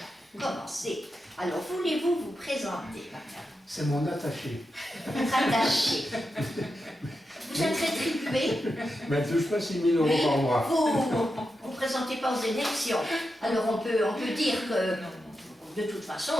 Commencez. Alors, voulez-vous vous présenter, madame? C'est mon attaché. Votre attaché. Vous êtes rétribué? Mais elle ne touche pas 6 000 euros par mois. Vous ne présentez pas aux élections. Alors, on peut dire que, de toute façon,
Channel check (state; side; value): normal; both; correlation 0.88